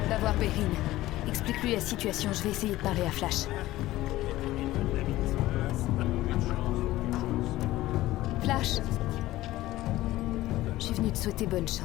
Va voir Perrine. Explique-lui la situation, je vais essayer de parler à Flash. Flash! Je suis venue te souhaiter bonne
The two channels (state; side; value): quieter; right; 16.5 dB